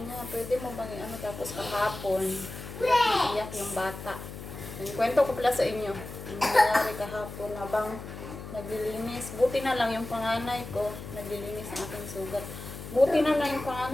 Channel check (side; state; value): left; noise; hum, 11 dB below the sound